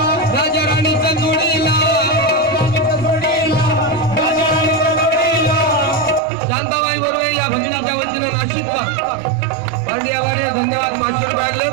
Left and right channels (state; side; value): drops out; left; at 6.2 s